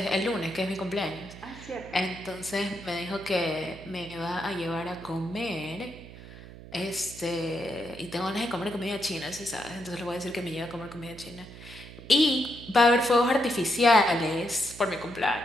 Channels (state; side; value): noise; right; hum, 16 dB below the sound